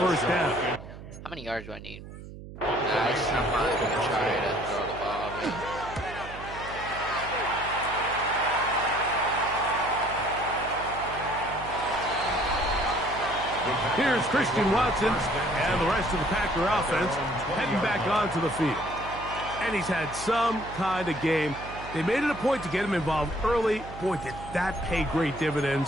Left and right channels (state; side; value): noise; right; hum, 14 dB below the sound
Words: down. How many yards do I need? I'm not going to try to throw the ball. But... Here's Christian Watson and the rest of the Packer offense heading back onto the field. And he's had some kind of game. They made it a point to get him involved early. Boy, did that pay great